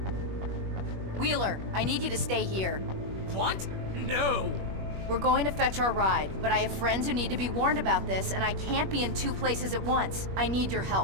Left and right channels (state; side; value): late; left; 21 ms